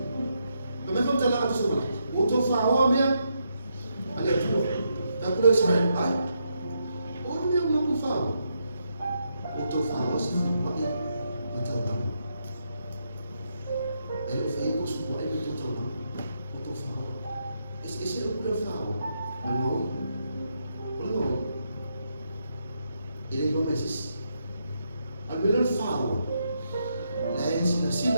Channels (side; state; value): both; inverted; correlation -0.80